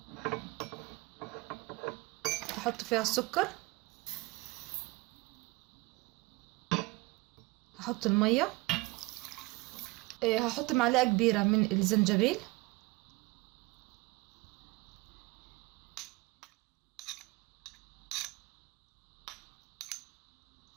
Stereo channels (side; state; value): left; quieter; 23.3 dB